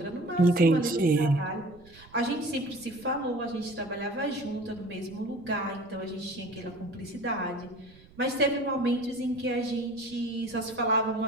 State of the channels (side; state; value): right; noise; rumble, 24 dB below the sound